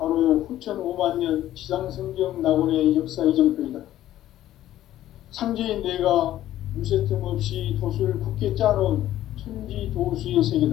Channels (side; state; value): right; quieter; 13.2 dB